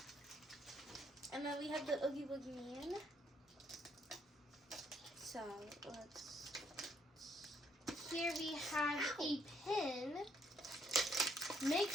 and then we have the Oogie Boogie Man. So let's. Here we have a pin. Make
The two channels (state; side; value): normal; both; correlation 0.69